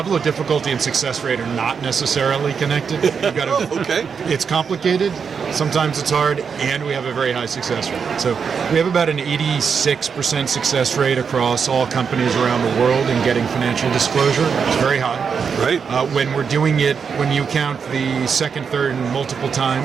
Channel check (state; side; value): quieter; left; 6.3 dB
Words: of difficulty and success rate are not necessarily connected. You've got to, okay. It's complicated, sometimes it's hard, and we have a very high success rate. So we have about an 86% success rate across all companies around the world in getting financial disclosure. It's very high. Right. When we're doing it, when you count the second, third, and multiple